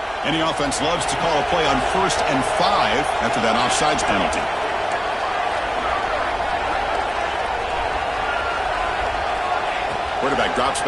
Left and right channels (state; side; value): identical; both; correlation 1.00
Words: Any offense loves to call a play on 1st and 5 after that offsides penalty. Quarterback drops